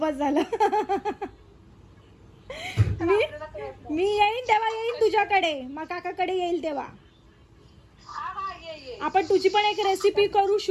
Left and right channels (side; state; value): both; identical; correlation 1.00